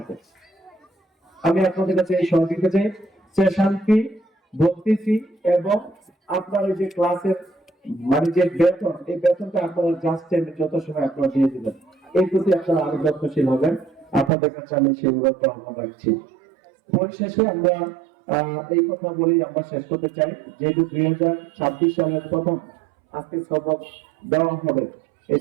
আমি আপনাদের কাছে এই সহযোগিতা চাই, সেশন ফি, ভর্তি ফি এবং আপনার এই যে ক্লাসের মানে যে বেতন, এই বেতনটা আপনারা জাস্ট টাইমে যত সময় আপনারা দিয়ে দিবেন, এই প্রতি আপনারা আরো যত্নশীল হবেন। আপনাদের কাছে আমি সেগুলো আহ্বান রাখছি। পরিশেষে আমরা এই কথা বলেই আমরা শেষ করতে চাই, যেহেতু 2026 সালের প্রথম আজকে সবক দেওয়া হবে, এই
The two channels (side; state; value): left; drops out; at 14.3 s